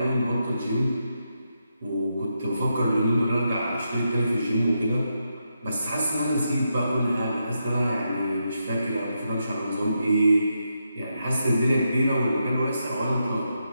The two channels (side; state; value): both; inverted; correlation -0.84